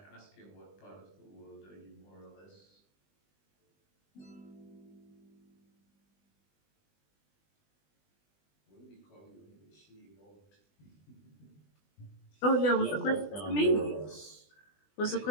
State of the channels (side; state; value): right; late; 20 ms